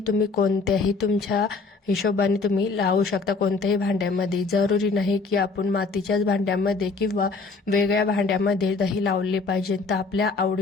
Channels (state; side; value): quieter; right; 4.1 dB